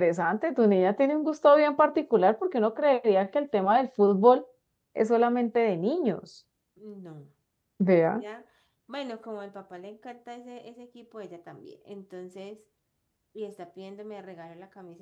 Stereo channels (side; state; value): both; identical; correlation 1.00